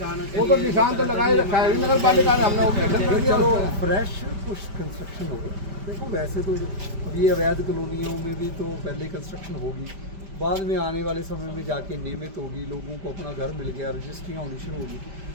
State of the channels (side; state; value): left; late; 5.1 ms